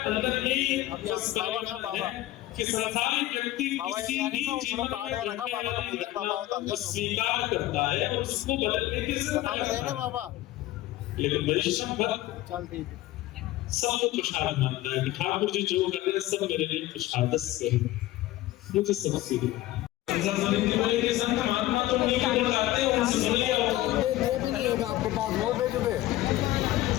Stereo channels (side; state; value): right; quieter; 16.0 dB